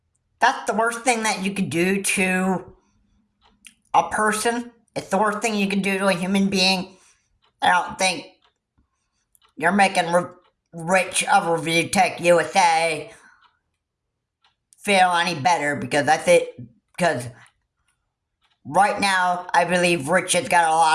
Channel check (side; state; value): both; identical; correlation 1.00